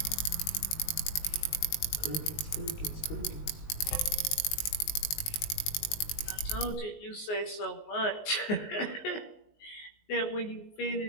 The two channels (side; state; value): right; late; 19 ms